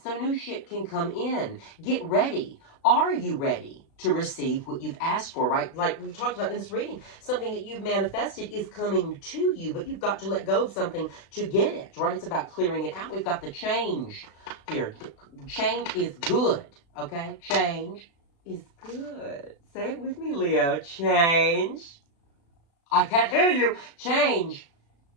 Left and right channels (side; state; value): right; late; 36 ms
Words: new shit can come in. Get ready. Are you ready to receive what you've asked for, right? Like we talked about in this reading, something that you've manifested is coming to you, but you've got to let go of something to get it, right? It's about clearing it out. We've got the change here. Change is good, okay? Change is good. Say it with me, Leo. Change. I can't hear you. Change